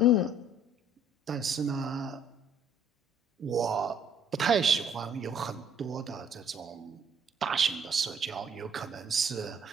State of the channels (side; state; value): both; normal; correlation 0.60